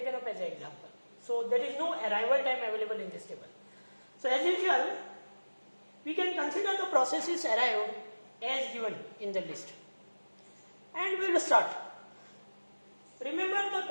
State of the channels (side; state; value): both; inverted; correlation -1.00